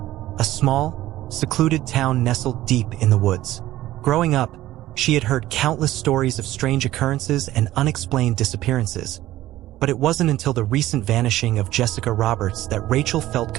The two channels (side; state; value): left; quieter; 15.2 dB